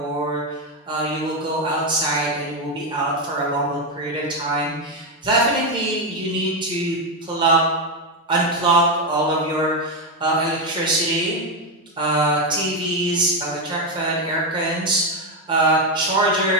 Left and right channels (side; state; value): both; normal; correlation 0.07